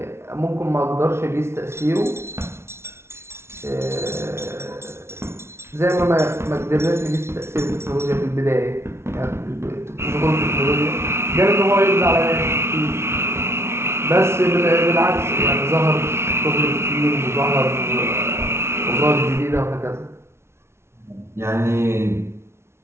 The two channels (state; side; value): late; left; 0.12 ms